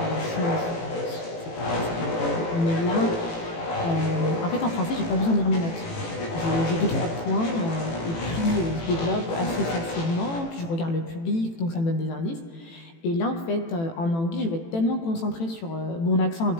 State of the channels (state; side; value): late; right; 18 ms